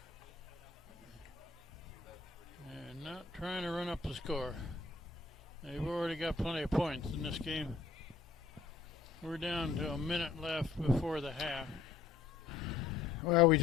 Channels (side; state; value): right; quieter; 4.6 dB